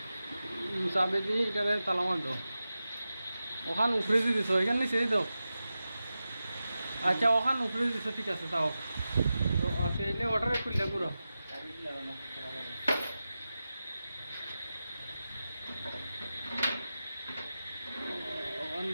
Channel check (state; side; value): inverted; both; correlation -0.93